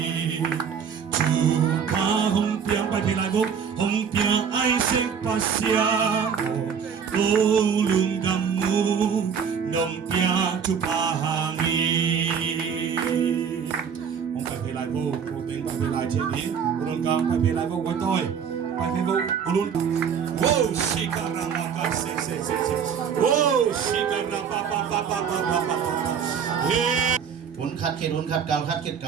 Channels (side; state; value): left; quieter; 7.1 dB